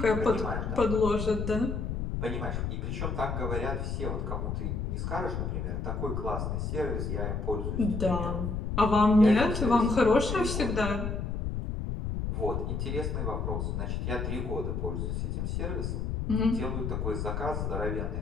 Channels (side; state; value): left; noise; rumble, 2 dB below the sound